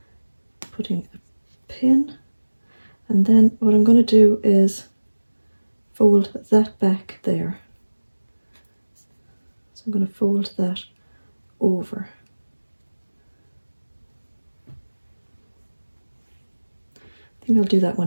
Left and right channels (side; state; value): both; inverted; correlation -1.00